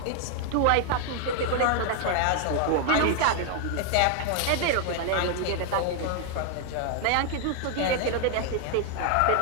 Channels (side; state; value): both; different; correlation 0.00